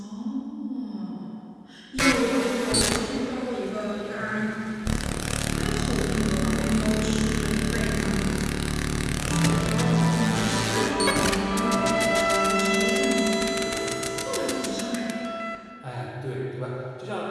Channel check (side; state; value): both; identical; correlation 1.00